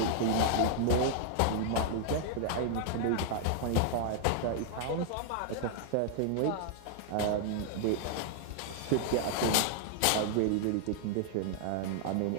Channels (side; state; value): both; different; correlation 0.00